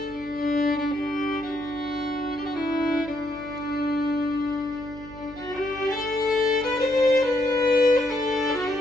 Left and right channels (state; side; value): noise; left; hum, 19 dB below the sound